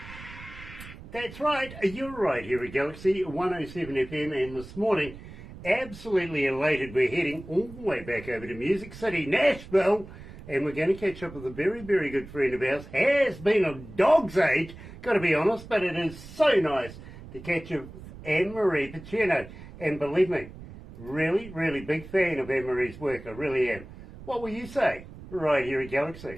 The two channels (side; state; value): right; noise; rumble, 16 dB below the sound